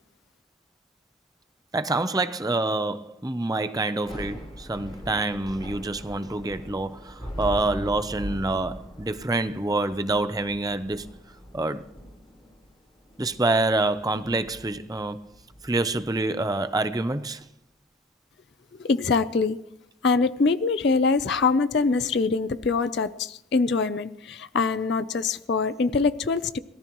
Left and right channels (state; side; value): normal; both; correlation 0.45